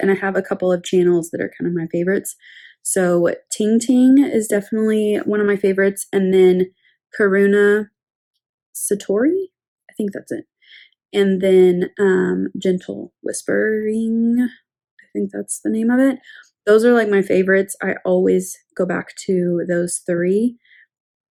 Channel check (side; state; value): both; identical; correlation 1.00